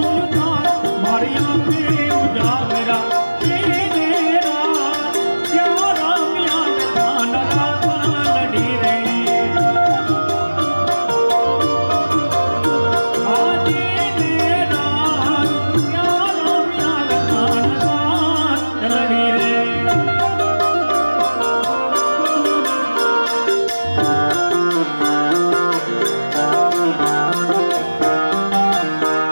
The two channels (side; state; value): both; inverted; correlation -1.00